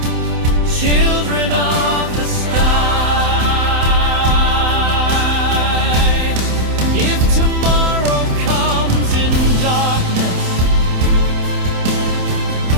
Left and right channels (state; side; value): late; left; 27 ms